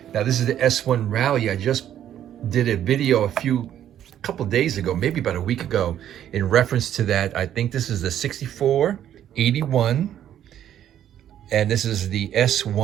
Now, this is the S1 Rally. I just did a video a couple days ago, maybe about a week ago, in reference to that. I think this is the 6481, and this is the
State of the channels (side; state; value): left; quieter; 10.8 dB